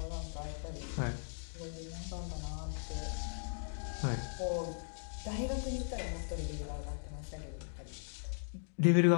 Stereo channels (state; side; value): silent; right; digital silence